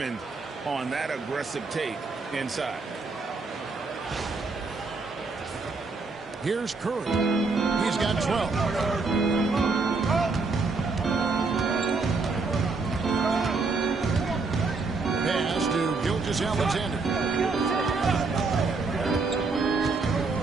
on that aggressive take inside. Here's Curry. He's got 12. Pass to Gilgeous-Alexander.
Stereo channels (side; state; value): left; quieter; 4.1 dB